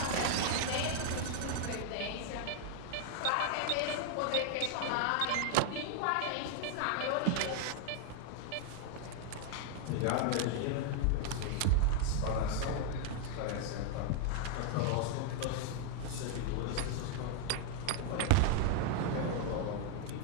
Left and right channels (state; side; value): different; both; correlation 0.00